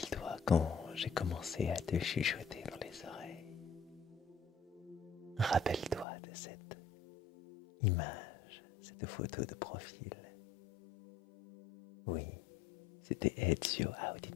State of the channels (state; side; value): drops out; right; at 6.1 s